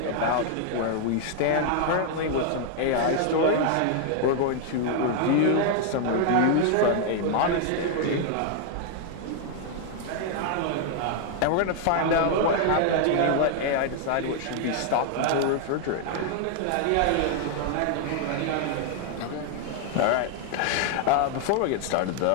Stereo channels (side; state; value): both; different; correlation 0.00